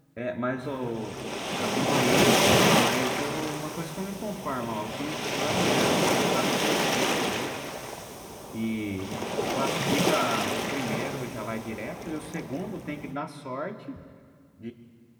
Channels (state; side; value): identical; both; correlation 1.00